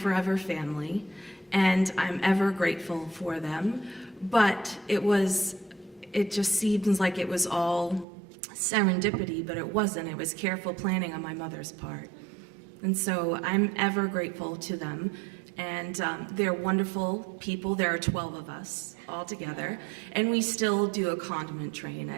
family, and I'm ever grateful for them. But it just seems like it was all serendipity, but it wasn't. It was careful planning on my mother's part. And so I'm ever grateful to them. And they're wonderful people. There are 12 of us all together, and we still do a condiment train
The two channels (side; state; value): left; drops out; at 8.1 s